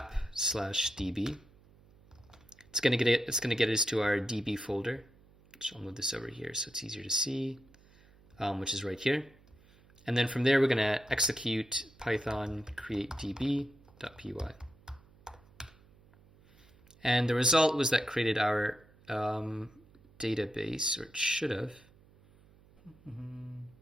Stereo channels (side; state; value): right; noise; hum, 27 dB below the sound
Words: It's going to get us to our db folder. So I'll move this over here so it's easier to see, which is right here. And then from there, we're going to execute Python create db.py. And the result was that created our database, or it should have.